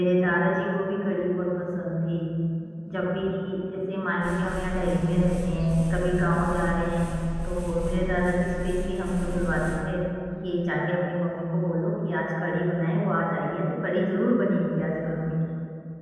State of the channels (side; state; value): both; identical; correlation 1.00